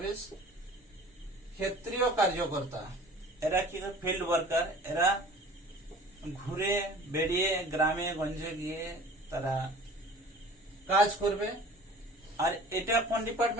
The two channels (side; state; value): both; normal; correlation 0.45